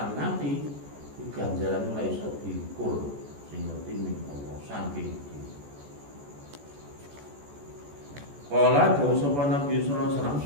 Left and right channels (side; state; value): left; late; 14 ms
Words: ngati ganjaran ora iso diukur sing ngerti ning Allah saking. Kala dawuh sapa Nabi sallallahu alaihi wasallam